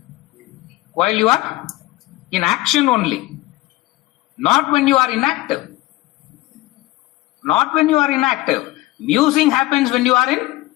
are in action only. Not when you are inactive. Not when you are inactive. Musing happens when you are in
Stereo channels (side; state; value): right; quieter; 18.8 dB